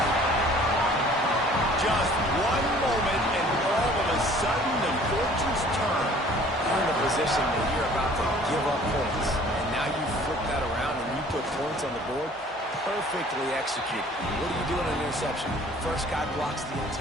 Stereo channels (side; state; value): both; normal; correlation 0.52